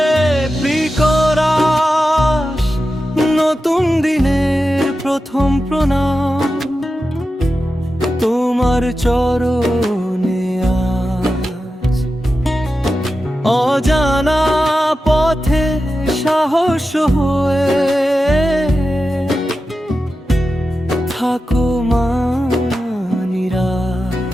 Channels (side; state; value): both; normal; correlation 0.92